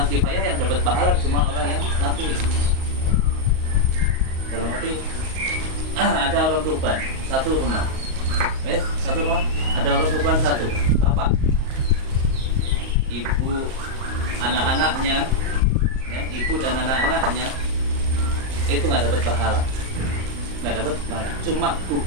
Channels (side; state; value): left; late; 38 ms